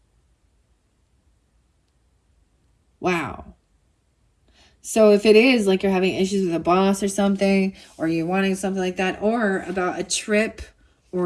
Wow. So if it is like you're having issues with a boss or something, or you're wanting something like that, or about a trip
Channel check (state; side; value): identical; both; correlation 1.00